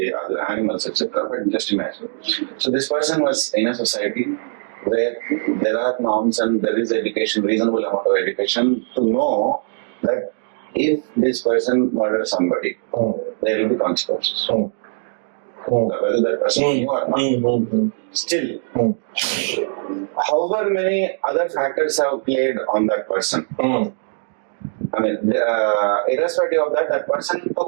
other animals, etc. But just imagine. So this person was in a society where there are norms and there is education, reasonable amount of education to know that if this person murders somebody, there will be consequences. Whether that person knew or not. Still, however many other factors have played on that person. I mean, irrespective of that, that person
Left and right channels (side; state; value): left; silent; digital silence